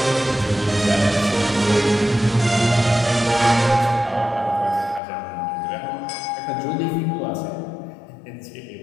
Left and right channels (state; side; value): drops out; right; at 5.0 s